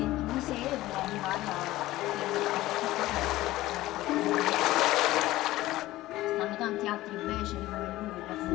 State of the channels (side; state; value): right; quieter; 16.8 dB